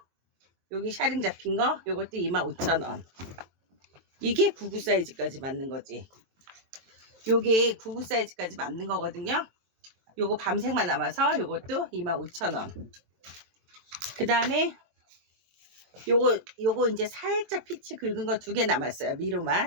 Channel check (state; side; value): late; left; 23 ms